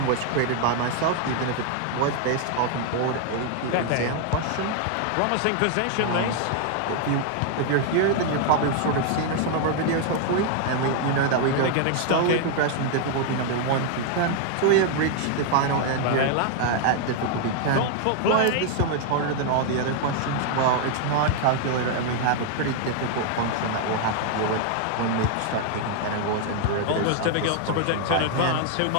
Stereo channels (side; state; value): both; different; correlation 0.00